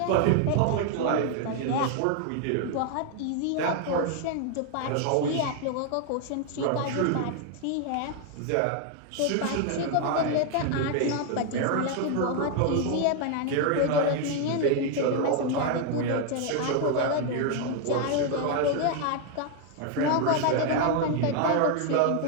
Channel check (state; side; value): different; both; correlation 0.00